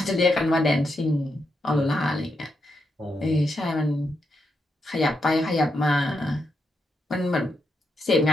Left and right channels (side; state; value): both; normal; correlation 0.83